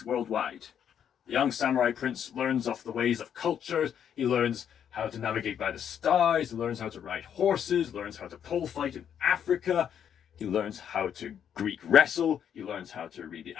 worldwide. The young samurai prince learns of the ways of culture. He learns how to navigate by the stars. He learns how to ride horses. Learns how to pole fight in Africa. He learns how to Greek wrestle. He learns how to read the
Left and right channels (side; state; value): right; quieter; 8.8 dB